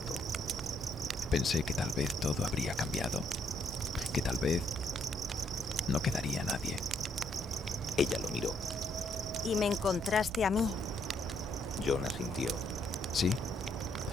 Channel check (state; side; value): normal; both; correlation 0.72